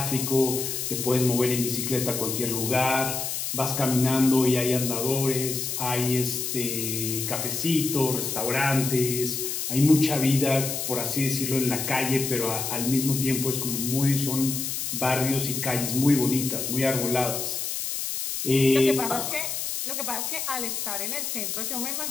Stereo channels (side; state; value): left; noise; hiss, 3 dB below the sound